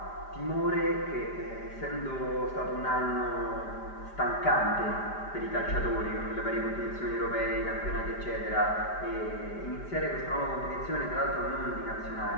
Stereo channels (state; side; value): late; right; 5.0 ms